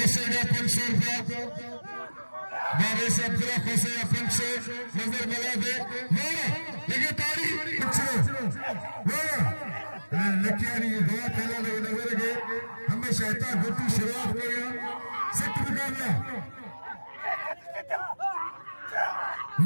500 रुपया बारे से अब्दुल्ला खोसेगा 500 नजर मिला दे लेके ताड़ी लकियारी दवा पहला लगे नजर के हमेशा इतना गुट्टी शुरुआत करेगा सख्त मुकाबला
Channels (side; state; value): both; inverted; correlation -1.00